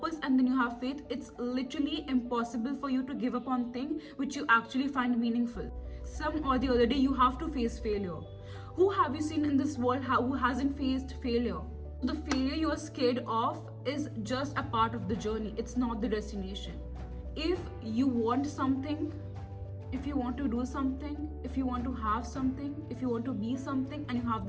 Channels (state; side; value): identical; both; correlation 1.00